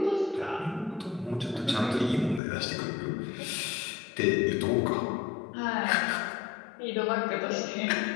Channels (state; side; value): drops out; right; at 2.4 s